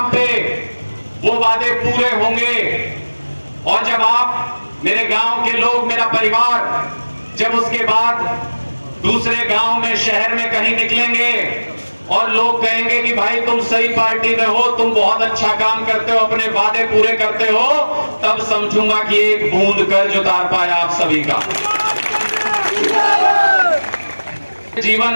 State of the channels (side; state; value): both; inverted; correlation -1.00